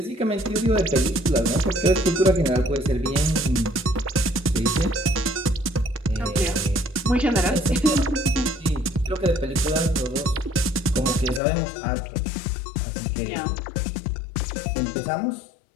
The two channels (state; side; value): drops out; right; at 11.4 s